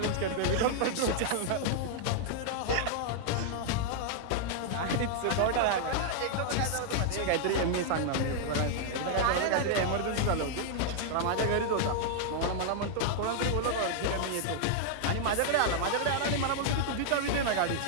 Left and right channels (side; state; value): both; different; correlation -0.01